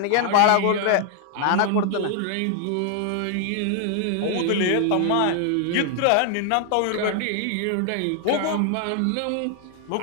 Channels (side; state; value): both; different; correlation 0.00